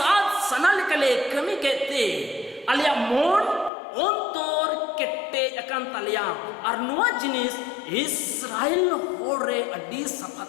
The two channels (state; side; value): drops out; right; at 3.7 s